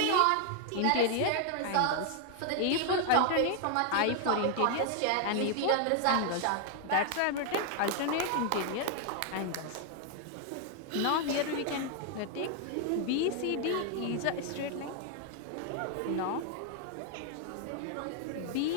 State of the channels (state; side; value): different; both; correlation 0.00